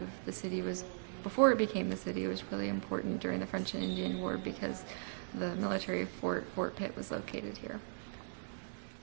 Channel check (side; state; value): left; silent; 52 dB below the other